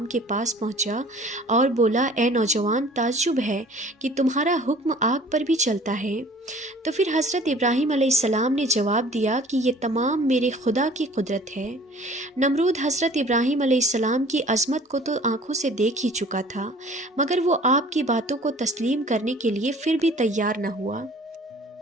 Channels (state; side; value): normal; both; correlation 0.50